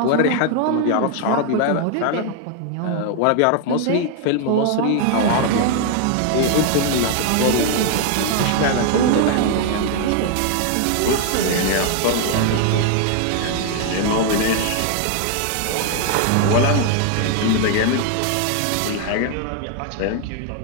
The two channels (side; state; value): both; different; correlation 0.00